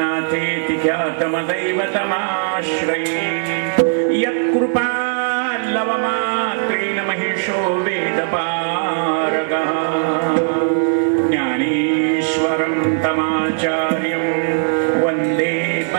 ख्यातमदैवतमाश्रये यत्कृपा लवमात्रेण महिषो वेदपारगः ज्ञानेश्वरं तमाचार्यं वन्दे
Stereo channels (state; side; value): silent; left; digital silence